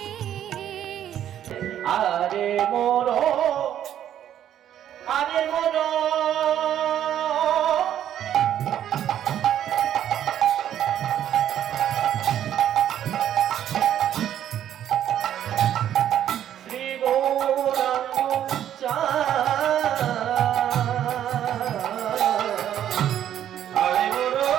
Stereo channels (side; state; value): left; quieter; 10.7 dB